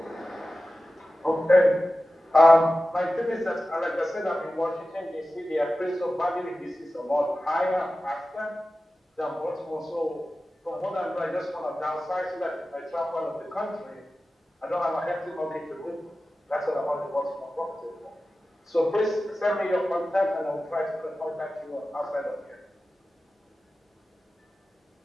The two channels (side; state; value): both; normal; correlation 0.94